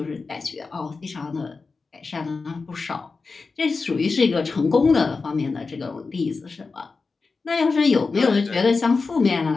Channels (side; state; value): right; quieter; 4.3 dB